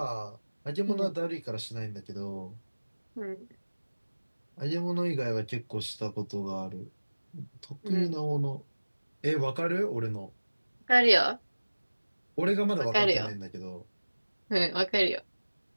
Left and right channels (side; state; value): both; inverted; correlation -1.00